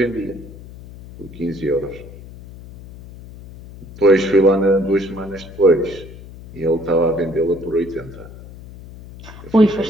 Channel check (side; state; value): left; noise; hum, 16 dB below the sound